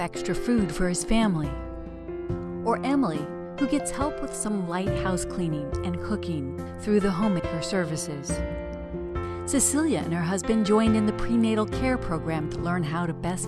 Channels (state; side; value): identical; both; correlation 1.00